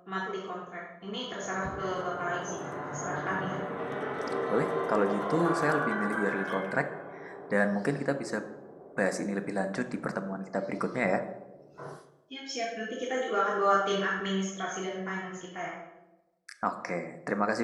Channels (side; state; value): both; identical; correlation 1.00